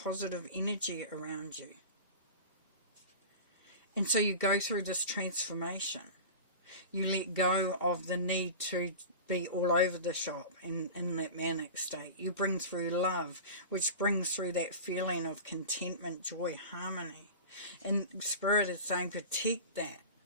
energy around you. And so you go through this transformation. You let go of the need to be all over the shop in that manic state. You bring through love, which brings through that feeling of contentment, joy, harmony. And Spirit is saying, protect that.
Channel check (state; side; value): inverted; both; correlation -0.32